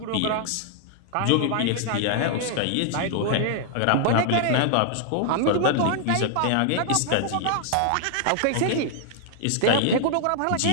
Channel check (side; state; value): both; different; correlation 0.00